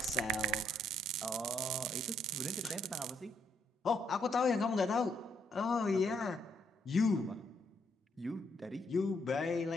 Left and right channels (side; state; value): both; normal; correlation 0.72